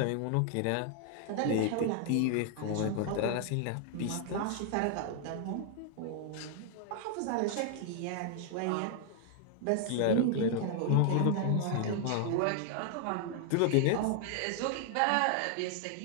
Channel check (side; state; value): both; different; correlation 0.00